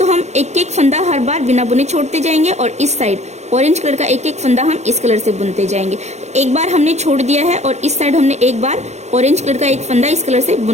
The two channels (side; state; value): left; late; 0.33 ms